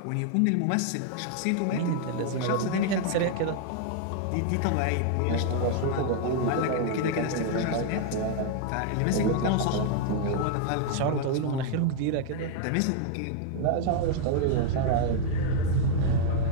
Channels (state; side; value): different; both; correlation 0.00